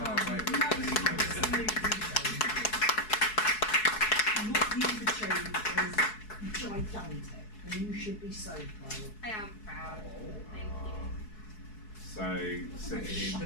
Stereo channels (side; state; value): right; late; 4.7 ms